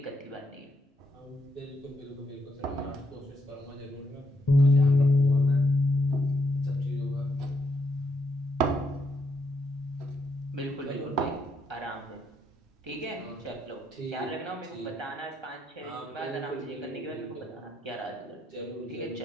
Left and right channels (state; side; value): normal; both; correlation 0.76